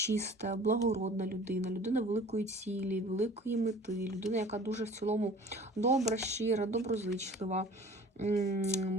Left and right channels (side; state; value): both; normal; correlation 0.46